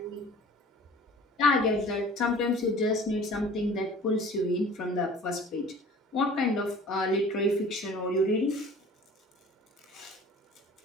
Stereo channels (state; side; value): normal; both; correlation 0.46